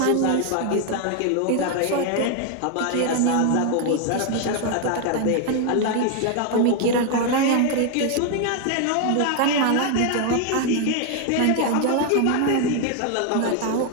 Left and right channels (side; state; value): both; different; correlation 0.01